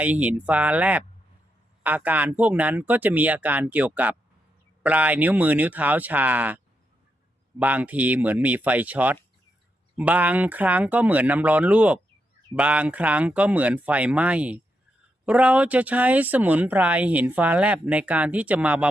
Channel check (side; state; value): both; normal; correlation 0.83